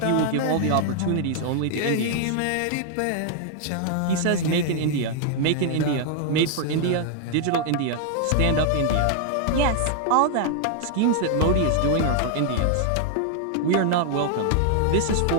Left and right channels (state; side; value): different; both; correlation 0.00